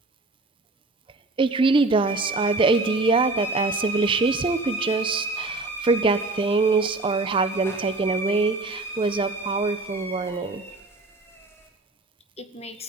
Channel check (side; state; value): left; quieter; 3.2 dB